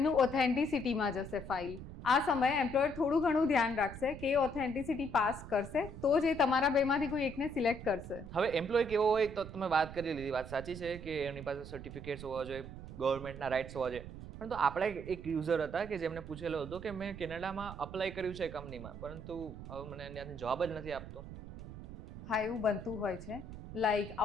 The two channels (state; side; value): noise; right; rumble, 11 dB below the sound